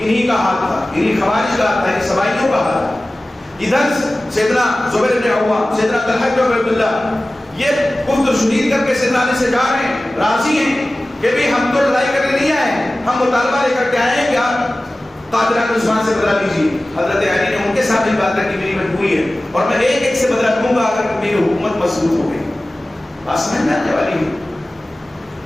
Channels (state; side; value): normal; both; correlation 0.97